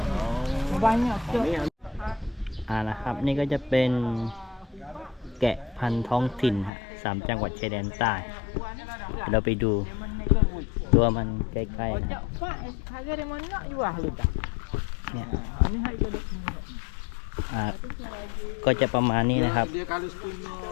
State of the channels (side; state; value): right; drops out; at 6.7 s